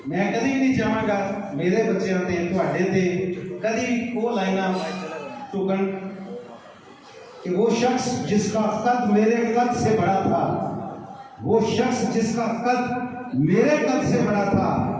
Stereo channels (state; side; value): identical; both; correlation 1.00